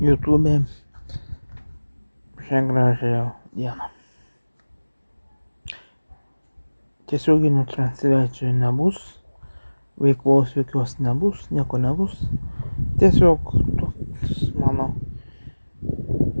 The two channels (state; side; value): inverted; both; correlation -1.00